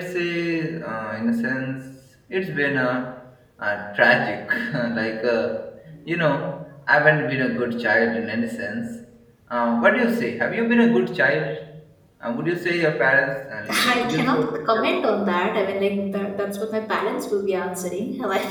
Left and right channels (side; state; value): both; identical; correlation 1.00